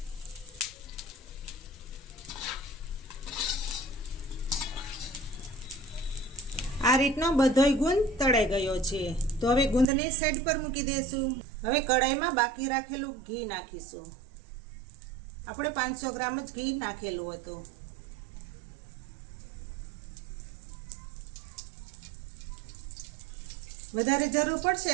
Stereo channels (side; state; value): left; drops out; at 9.9 s